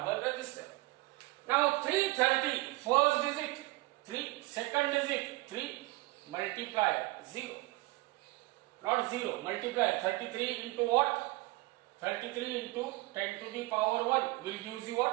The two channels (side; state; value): left; quieter; 21.4 dB